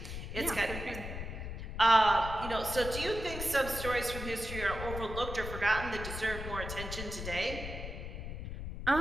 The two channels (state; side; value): noise; left; rumble, 7 dB below the sound